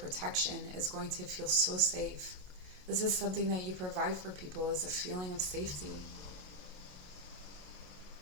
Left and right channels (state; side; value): late; left; 27 ms